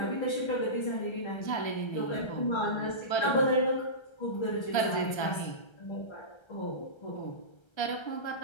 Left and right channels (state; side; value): late; right; 1.3 ms